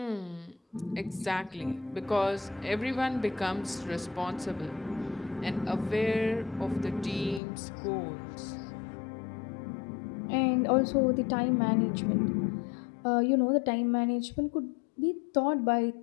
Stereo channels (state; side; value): drops out; right; at 7.4 s